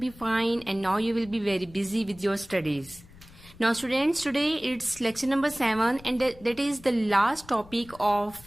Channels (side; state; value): left; noise; rumble, 22 dB below the sound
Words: fine and now you will be very busy with your studies. Now students, today it's lecture number 7 and that is the last topic of